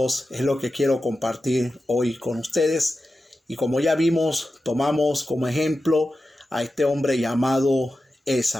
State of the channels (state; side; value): normal; both; correlation 0.92